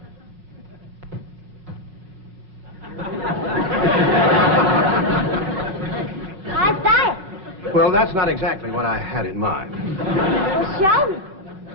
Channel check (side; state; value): left; late; 5.4 ms